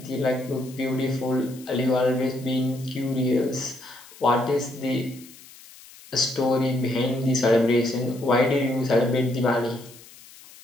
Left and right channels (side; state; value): left; noise; hiss, 21 dB below the sound